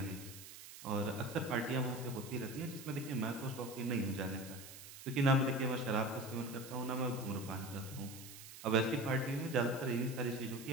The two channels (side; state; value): right; noise; hiss, 14 dB below the sound